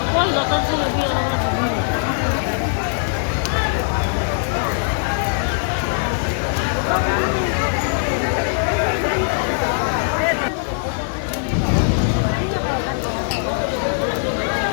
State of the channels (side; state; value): right; silent; digital silence